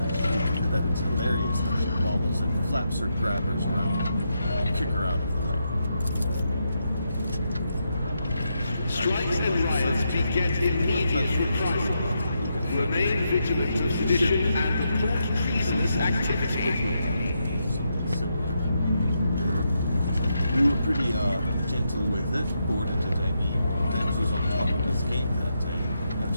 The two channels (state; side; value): inverted; both; correlation -0.82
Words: that it's hilarious how she wobbles and flaps her grabbers around and kick her out of the way. Strikes and riots beget immediate reprisal. Remain vigilant of sedition and report treasonous activity. We were pretty gentle with it, bored it at Dems was on top of his game that day.